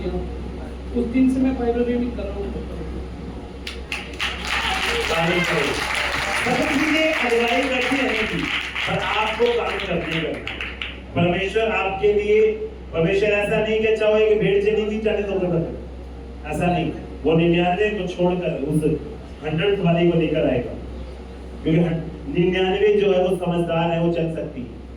उस दिन से मैं बाइबल रीडिंग कर रहा हूँ। सब चीजें अगुवाई करती रहने की, पर आपको काम करने करना। परमेश्वर आपके लिए, परमेश्वर ऐसा नहीं कि चाहे कि भेड़ चली गई 40 होकर बदल, ऐसा नहीं। वो 99 को छोड़कर उस 100th वाली को लेकर आएगा, क्योंकि 99 जो है वो समझदार है, वो चल सकती है।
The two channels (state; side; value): identical; both; correlation 1.00